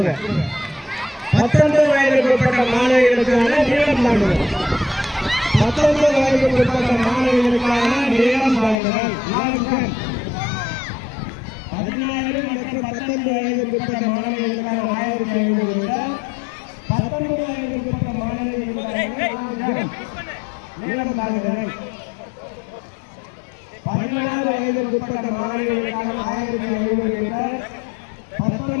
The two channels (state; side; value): drops out; right; at 8.8 s